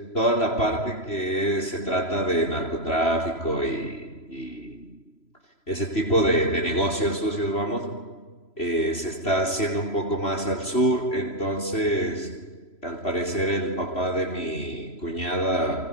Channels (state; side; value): late; right; 3.0 ms